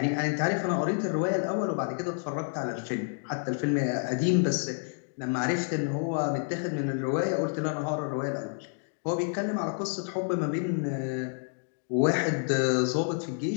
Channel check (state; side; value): silent; right; 58 dB below the other